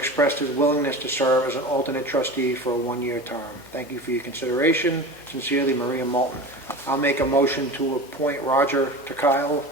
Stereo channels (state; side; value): noise; left; hum, 27 dB below the sound